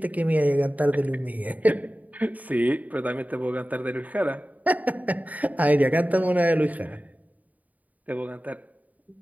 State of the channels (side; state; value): left; late; 0.075 ms